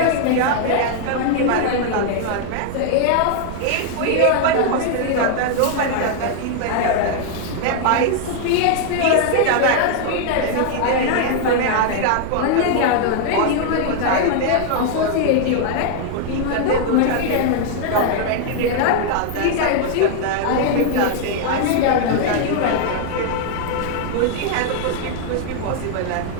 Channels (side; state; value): both; different; correlation 0.00